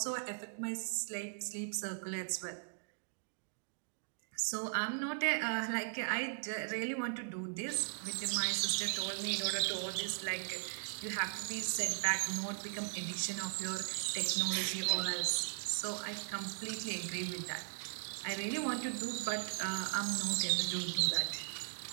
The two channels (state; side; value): silent; left; digital silence